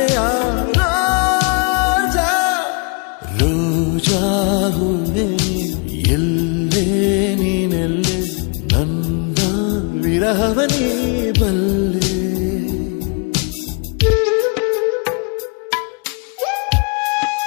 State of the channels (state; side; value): quieter; right; 36.1 dB